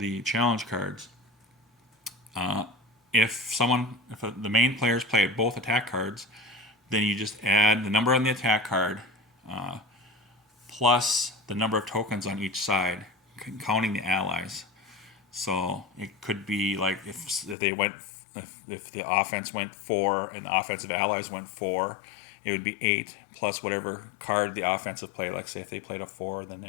challenge cards. If the main players play both attack cards, then you just add the number on the attack card plus the number of tokens on each side, counting the allies. So it could be like if the offense went 4 and the offensive allies went 4, it would be 8 plus whatever card the offensive played. Like say if they played a 4, then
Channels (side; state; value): right; drops out; at 17.6 s